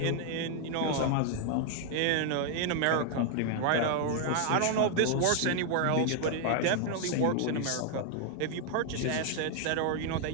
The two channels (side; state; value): both; different; correlation 0.00